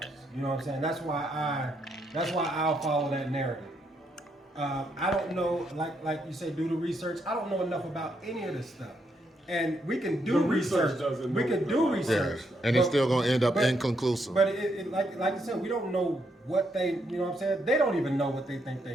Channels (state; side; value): normal; both; correlation 0.76